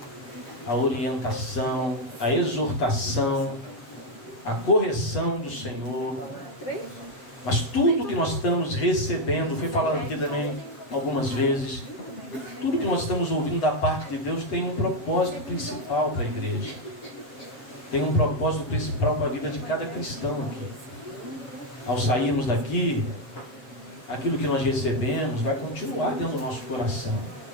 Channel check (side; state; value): right; late; 8.2 ms